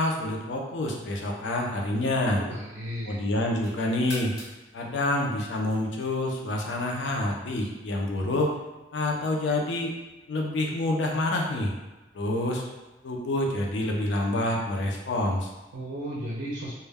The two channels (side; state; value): both; normal; correlation 0.49